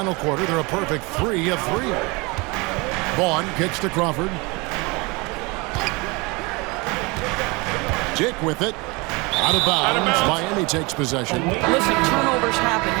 quarter. They're a perfect 3 of 3. Vaughn kicks to Crawford. Dick with it. Out of bounds. Miami takes possession. Listen, turnovers happen.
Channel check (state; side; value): quieter; left; 26.5 dB